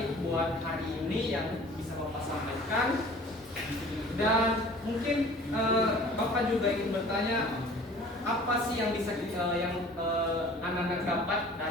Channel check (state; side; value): normal; both; correlation 0.47